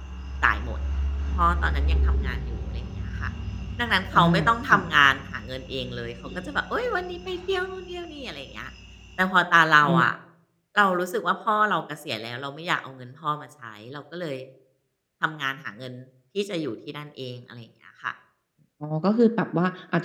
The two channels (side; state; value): both; identical; correlation 1.00